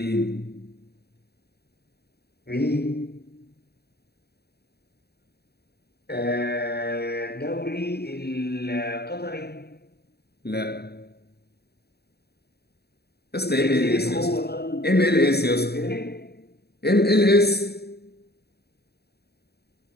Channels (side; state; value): right; late; 0.47 ms